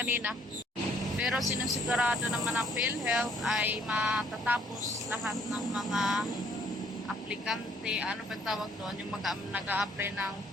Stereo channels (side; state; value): both; normal; correlation 0.64